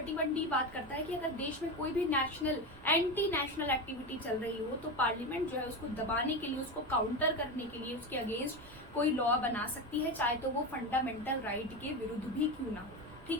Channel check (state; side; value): noise; right; rumble, 21 dB below the sound